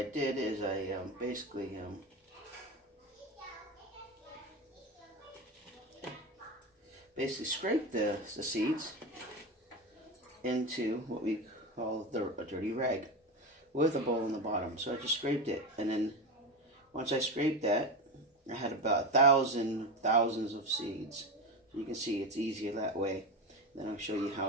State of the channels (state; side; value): normal; both; correlation 0.19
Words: did is I basically scraped the seeds into what we call a dirty rag with a bowl in the bottom. So I just scraped it, and then once I scraped that, I had about thousands of seeds. So you can see it's easier that way. Then I'll show you